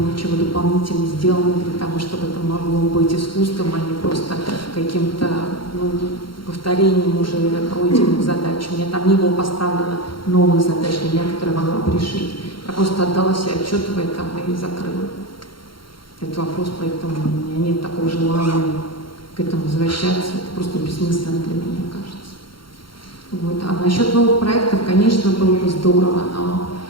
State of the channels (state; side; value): late; right; 0.73 ms